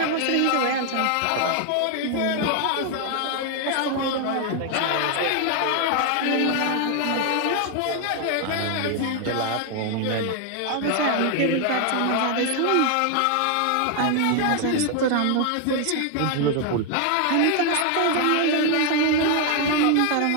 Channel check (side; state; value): both; different; correlation 0.01